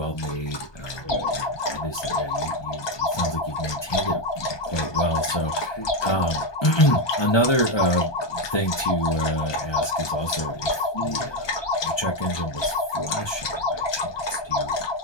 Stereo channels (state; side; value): late; right; 1.2 ms